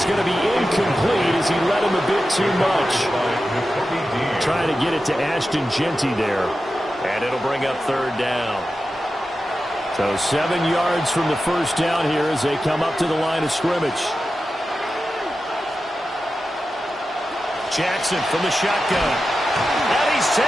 going to be incomplete as he led him a bit too much. Trying to get it to Ashton Genty there. And it'll bring up 3rd down. So 7 yards from the first down here as they come up to the line of scrimmage. Jackson from the shotgun. And he's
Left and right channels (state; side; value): normal; both; correlation 0.92